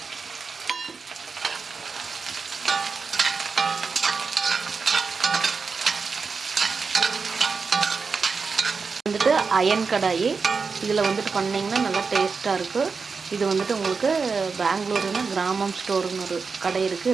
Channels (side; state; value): left; quieter; 5.0 dB